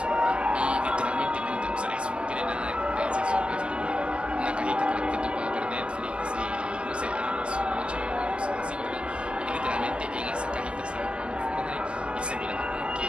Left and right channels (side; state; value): left; late; 0.056 ms